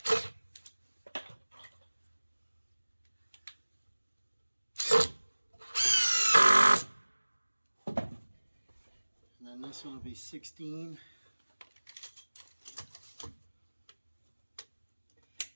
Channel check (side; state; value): both; inverted; correlation -1.00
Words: then this one will be 16.